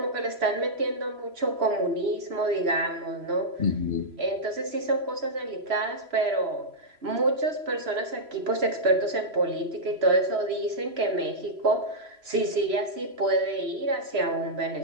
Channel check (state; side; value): late; left; 3.0 ms